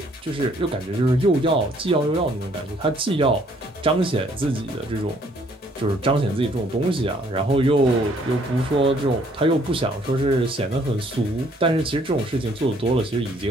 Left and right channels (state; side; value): normal; both; correlation 0.63